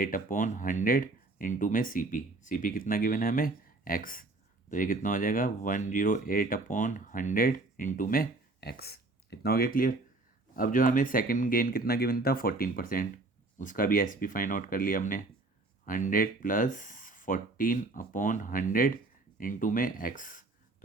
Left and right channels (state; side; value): quieter; left; 3.1 dB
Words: इंटू में सी पी कितना गिवन है हमें एक्स, तो ये कितना हो जाएगा 108/100 इंटू में एक्स। कितना हो गया क्लियर। अब जो हमें सेकंड गेन कितना गिवन था 14%, उसका भी एस पी फाइंड आउट कर लिया हमने, 100 + 14/100 इंटू में एक्स,